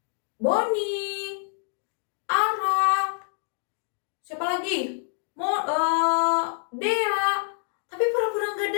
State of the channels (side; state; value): right; silent; digital silence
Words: Boni, Ara, siapa lagi? Dea. Tapi pura-pura nggak